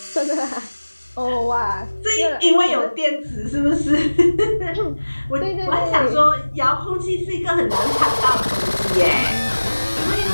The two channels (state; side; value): inverted; both; correlation -1.00